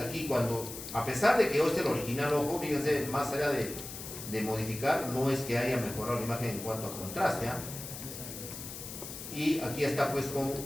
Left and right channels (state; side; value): noise; left; hiss, 10 dB below the sound